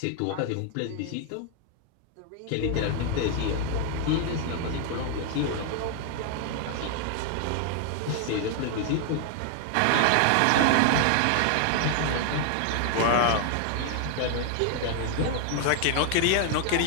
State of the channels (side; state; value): both; different; correlation 0.00